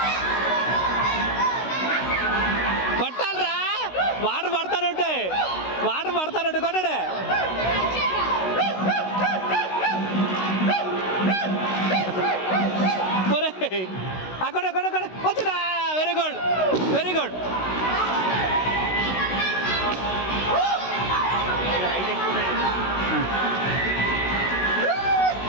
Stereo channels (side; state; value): right; late; 16 ms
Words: కొట్టాలరా వాటర్ పడతానుంటాయి వాటర్ పడతానుంటే కొట్టాడే అక్కడ అక్కడ అక్కడ వచ్చినా వెరీ గుడ్ వెరీ గుడ్